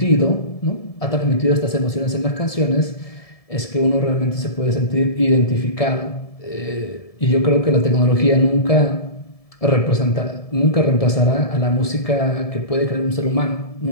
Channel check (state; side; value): late; right; 1.7 ms